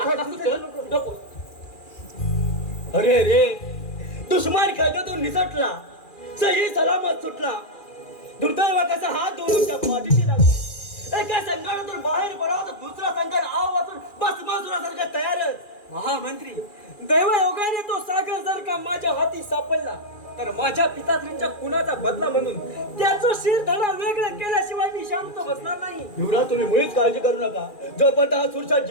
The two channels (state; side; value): late; right; 2.4 ms